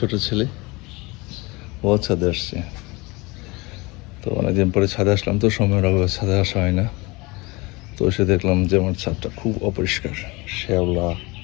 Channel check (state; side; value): quieter; right; 24.7 dB